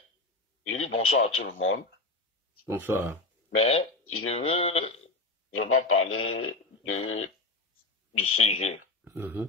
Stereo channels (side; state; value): right; quieter; 3.3 dB